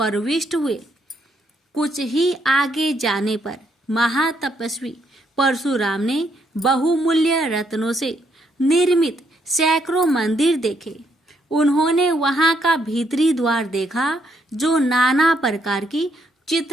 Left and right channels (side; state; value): both; normal; correlation 0.74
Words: हुए। कुछ ही आगे जाने पर महातपस्वी परशुराम ने बहुमूल्य रत्नों से निर्मित सैकड़ों मंदिर देखे। उन्होंने वहां का भीतरी द्वार देखा जो नाना प्रकार की